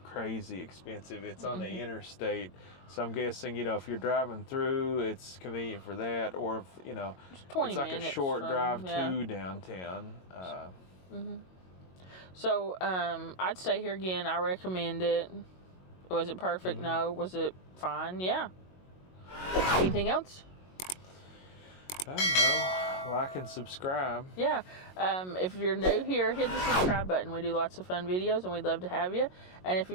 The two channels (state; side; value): late; right; 22 ms